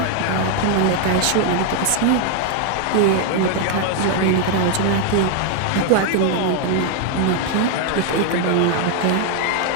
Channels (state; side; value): different; both; correlation 0.01